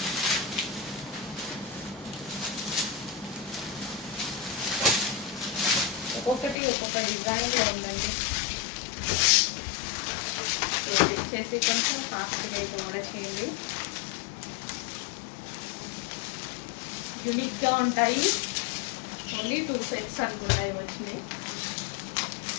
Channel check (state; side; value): drops out; right; at 6.6 s